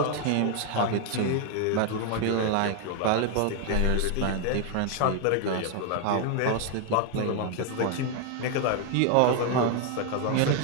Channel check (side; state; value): both; different; correlation 0.00